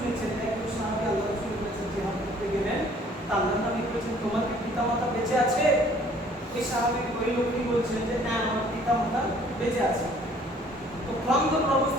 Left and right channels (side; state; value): both; normal; correlation 0.57